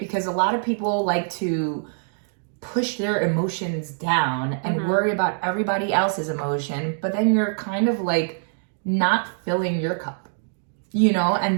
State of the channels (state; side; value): silent; left; digital silence